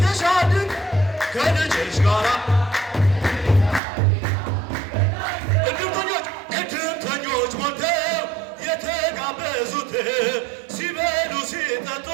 ከልጅሽ ጋራ እድምተኞች ሞልተው የተጋበዙት ሲበሉ ሲጠጡ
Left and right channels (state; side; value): drops out; left; at 3.8 s